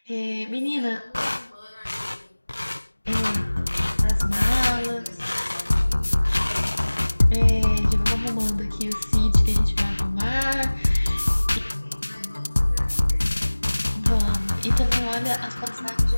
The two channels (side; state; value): both; inverted; correlation -1.00